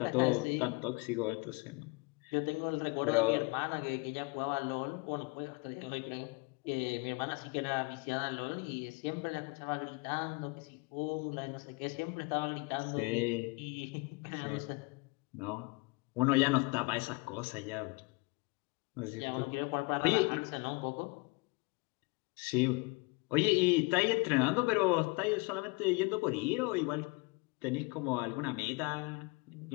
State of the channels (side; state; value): right; quieter; 28.4 dB